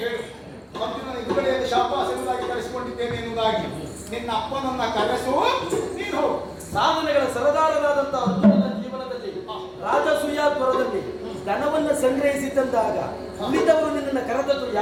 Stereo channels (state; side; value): identical; both; correlation 1.00